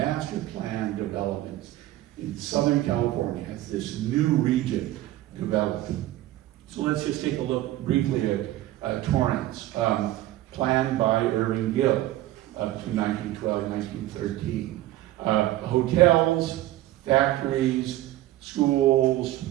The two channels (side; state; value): left; quieter; 15.3 dB